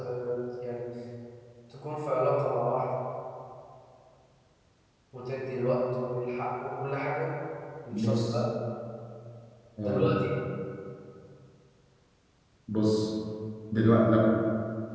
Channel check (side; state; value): both; identical; correlation 1.00